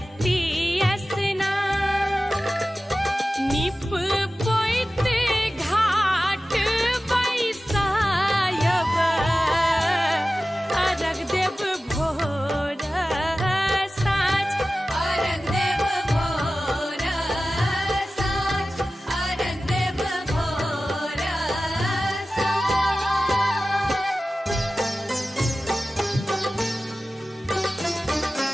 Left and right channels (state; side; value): normal; both; correlation 0.95